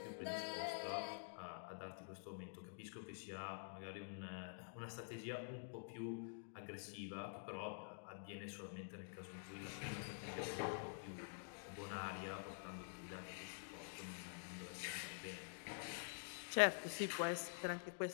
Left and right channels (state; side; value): silent; right; digital silence